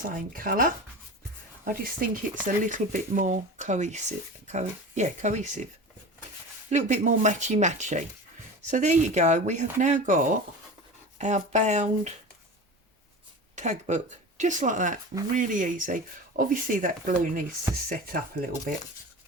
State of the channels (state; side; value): normal; both; correlation 0.32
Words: colour. I just think it's a little bit more cohesive. Cohesive. A little bit more matchy-matchy. So there you go. We have now got our bound tag book. Just like that. Really easy. Obviously that glue needs to set up a little bit.